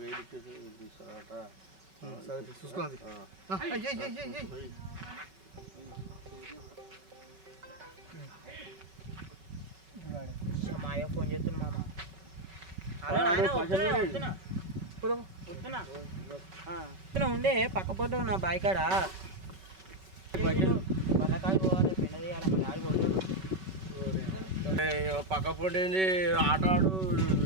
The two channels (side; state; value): left; late; 5.3 ms